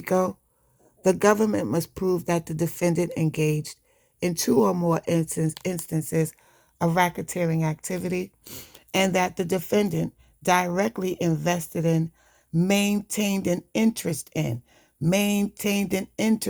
the government must prove that the defendant engaged in two or more instances of racketeering activity and that the defendant directly invested in, maintained an interest in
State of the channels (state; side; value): identical; both; correlation 1.00